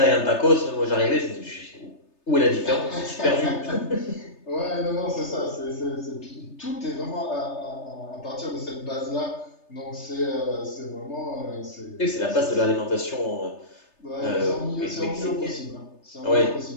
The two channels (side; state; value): right; late; 3.3 ms